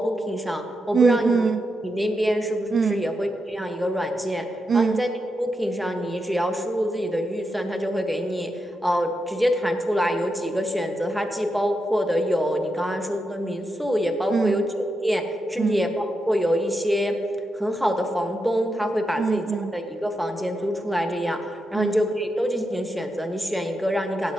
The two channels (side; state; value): both; normal; correlation 0.86